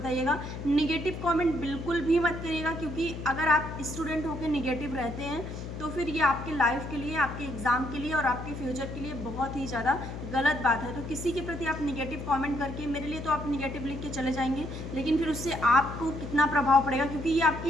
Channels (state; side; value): noise; left; hum, 8 dB below the sound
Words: नेगेटिव कमेंट बिल्कुल भी मत करिएगा, क्योंकि अगर आप स्टूडेंट होकर नेगेटिव रहते हैं तो फिर ये आपके लाइफ के लिए, आपके एग्ज़ाम के लिए और आपके फ्यूचर के लिए बहुत ही ज़्यादा गलत बात है। तो किसी के प्रति आप नेगेटिव कमेंट करके, मेरे लिए तो आप नेगेटिव लिख के चले जाएंगे, लेकिन फिर उससे आपको कितना प्रभाव पड़ेगा, क्योंकि ये